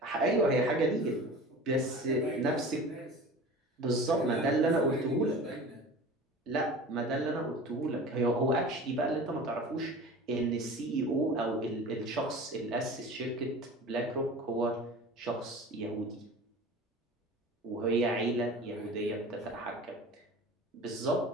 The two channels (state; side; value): normal; both; correlation 0.38